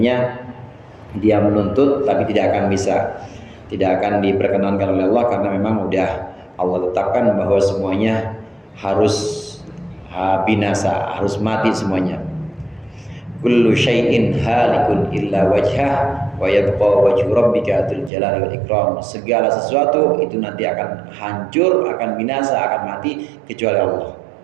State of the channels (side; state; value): left; drops out; at 18.1 s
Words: dia menuntut tapi tidak akan diperkenankan oleh Allah karena memang udah Allah tetapkan bahwa semuanya harus binasa, harus mati semuanya. Kullu syai'in halikun illa wajhah wa yabqa wajhu rabbika dzul jalali wal ikram. Segala sesuatu itu nanti akan hancur, akan binasa, akan mati kecuali Allah.